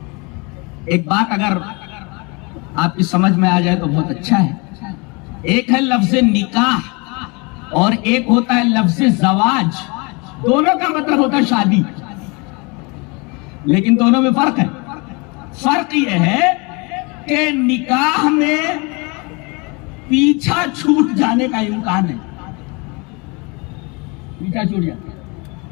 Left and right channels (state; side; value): quieter; right; 29.0 dB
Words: ایک بات اگر آپ کی سمجھ میں آ جائے تو بہت اچھا ہے. ایک ہے لفظ نکاح اور ایک ہوتا ہے لفظ زواج. دونوں کا مطلب ہوتا ہے شادی، لیکن دونوں میں فرق ہے. فرق یہ ہے کہ نکاح میں پیچھا چھوٹ جانے کا امکان ہے. پیچھا چھوٹ جاتا